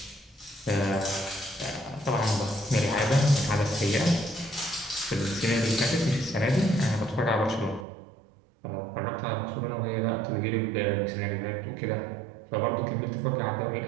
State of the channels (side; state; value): left; drops out; at 7.9 s